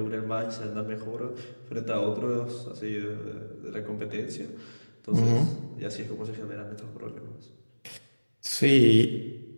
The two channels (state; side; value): inverted; both; correlation -1.00